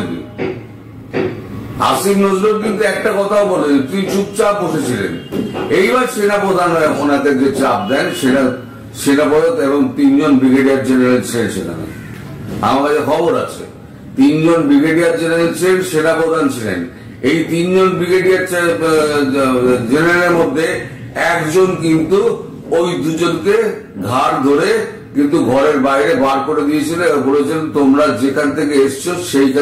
আসিফ নজরুল কিন্তু একটা কথাও বলেনি, তিনি চুপচাপ বসেছিলেন। এইবার সেনাপ্রধান ওনাকে যে চাপ দেন, সেটা সেনাপ্রধান এবং 3 জন ব্রিগেডিয়ার জেনারেল ছিলেন সেখানে। আমার কাছে খবর আছে, 3 জন ব্রিগেডিয়ার জেনারেল ছিলেন, সেনাপ্রধান ছিলেন। এই 3 জন ব্রিগেডিয়ার জেনারেলের মধ্যে একজন কিন্তু ওই দুজনকে ঘাড় ধরে কিন্তু ঘরের বাইরে বার করে দিয়েছিল, বলেছেন তোমরা যেখান থেকে এসছো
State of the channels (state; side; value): identical; both; correlation 1.00